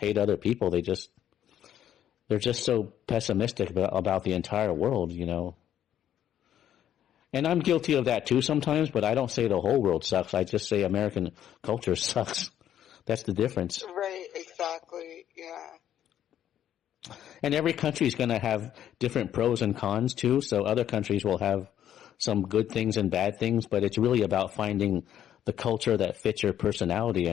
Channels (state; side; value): quieter; right; 10.7 dB